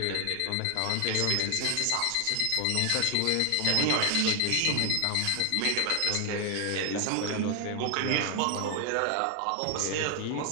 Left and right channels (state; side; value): different; both; correlation 0.00